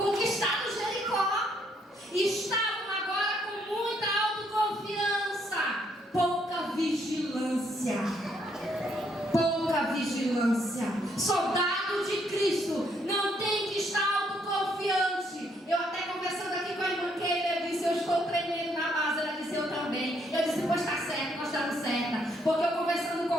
Jericó, e estavam agora com muita autoconfiança, pouca vigilância. Soldado de Cristo não tem que estar autoconfiante. Eu até conversando aqui com a irmã Keila, eu disse: eu estou tremendo na base. Ela disse: eu também. Eu disse: pois está certo, nós estamos certa. Porque eu conversando com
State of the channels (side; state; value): both; normal; correlation 0.71